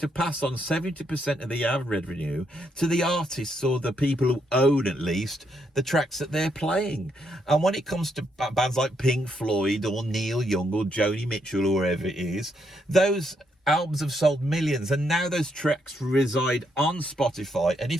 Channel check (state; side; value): normal; both; correlation 0.76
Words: pass on 70% of the ad revenue to the artists or the people who own, at least, the tracks that they're playing. And when it comes to bands like Pink Floyd or Neil Young or Joni Mitchell or whoever it is, those albums have sold millions, and now those tracks reside on Spotify. And